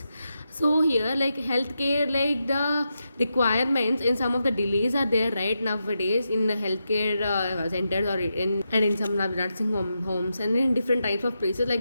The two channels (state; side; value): inverted; both; correlation -0.87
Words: So here, like healthcare, like the requirements in some of the delays are there right nowadays in the healthcare centers or in some nursing homes and in different types of places.